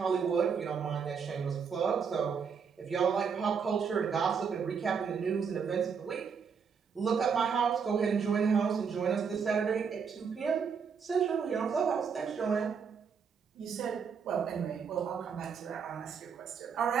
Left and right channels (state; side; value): quieter; left; 6.3 dB